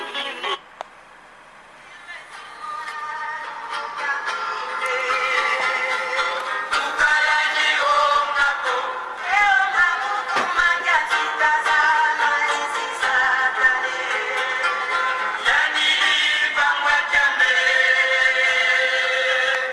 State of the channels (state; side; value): identical; both; correlation 1.00